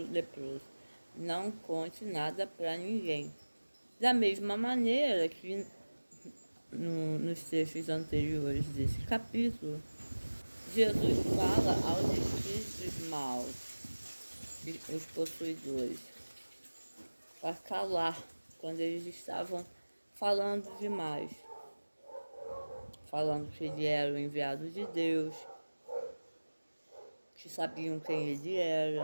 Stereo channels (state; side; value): inverted; both; correlation -1.00